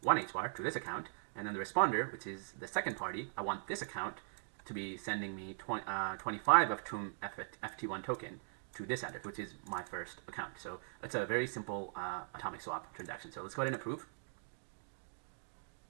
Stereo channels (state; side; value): silent; left; digital silence